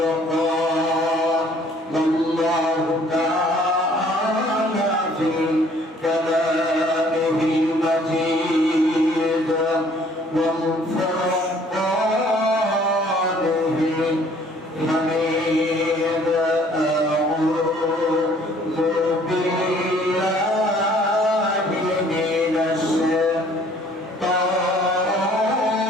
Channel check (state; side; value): normal; both; correlation 0.58